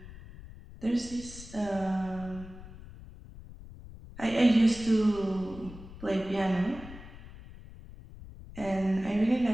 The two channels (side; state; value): left; noise; rumble, 16 dB below the sound